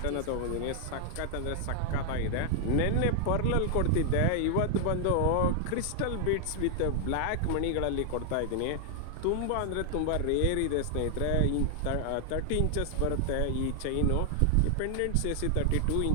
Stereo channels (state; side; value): different; both; correlation 0.00